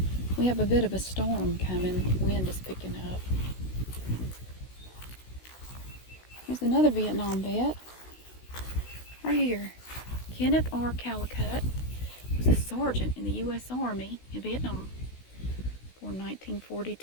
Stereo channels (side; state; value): right; late; 16 ms